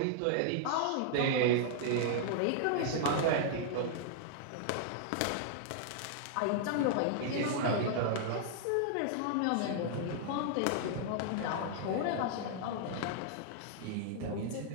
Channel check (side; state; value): both; different; correlation -0.01